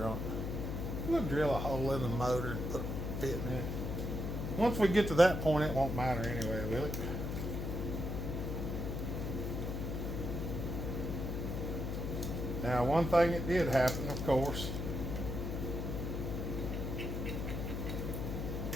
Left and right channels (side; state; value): left; noise; hum, 3 dB below the sound